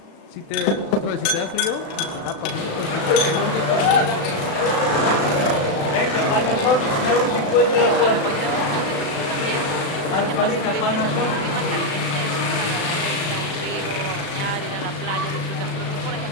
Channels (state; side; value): late; right; 36 ms